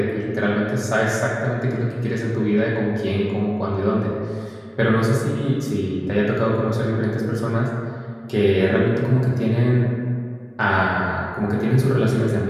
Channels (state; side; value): identical; both; correlation 1.00